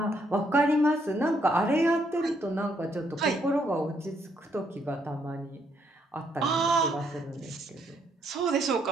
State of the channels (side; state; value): both; normal; correlation 0.72